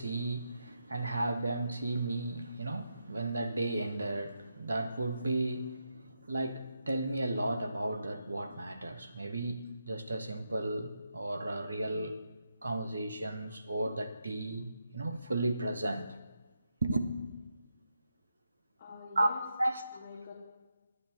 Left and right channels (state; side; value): inverted; both; correlation -0.84